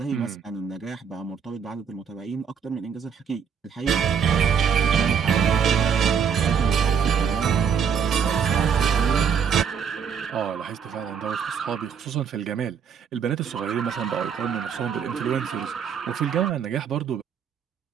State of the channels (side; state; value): left; quieter; 7.0 dB